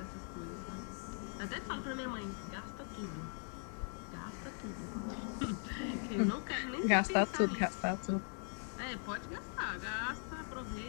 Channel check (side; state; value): right; silent; 51 dB below the other